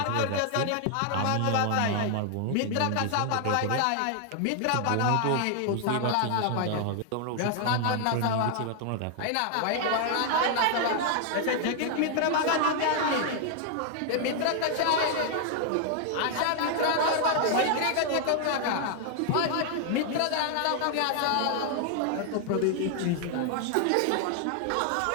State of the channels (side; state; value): both; different; correlation 0.00